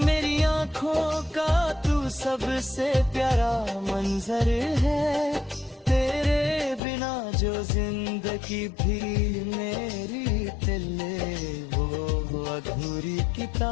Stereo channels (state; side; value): drops out; right; at 6.8 s